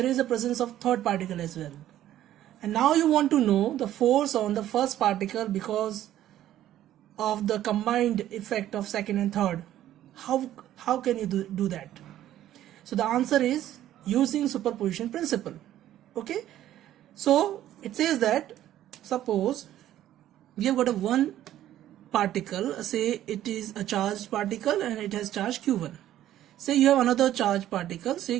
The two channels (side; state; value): left; quieter; 12.6 dB